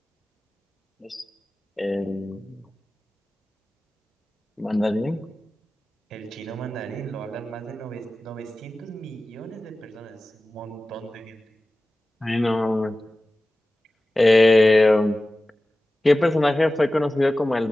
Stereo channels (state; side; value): normal; both; correlation 0.96